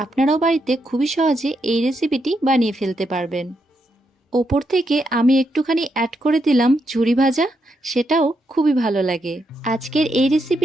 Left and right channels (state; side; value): normal; both; correlation 0.81